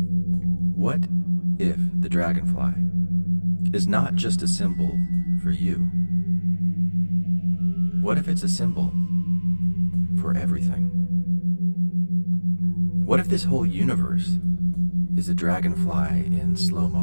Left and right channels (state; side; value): inverted; both; correlation -1.00